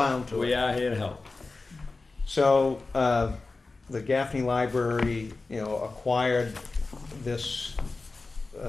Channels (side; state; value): right; quieter; 3.7 dB